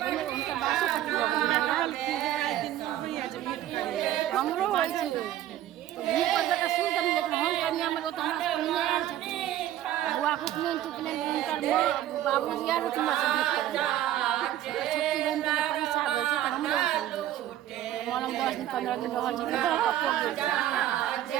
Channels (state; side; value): quieter; left; 12.7 dB